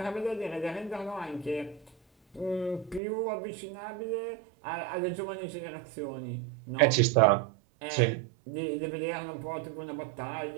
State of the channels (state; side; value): drops out; left; at 3.0 s